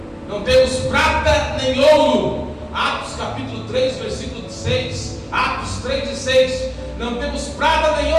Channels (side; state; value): both; identical; correlation 1.00